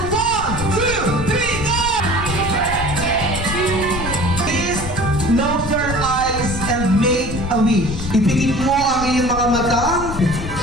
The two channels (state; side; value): noise; left; rumble, 7 dB below the sound